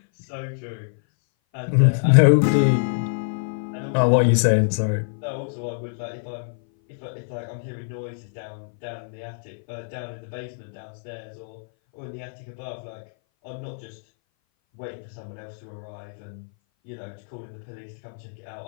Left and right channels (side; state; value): right; silent; 58 dB below the other